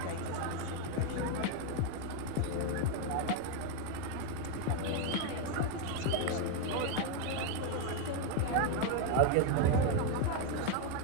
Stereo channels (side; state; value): both; different; correlation 0.01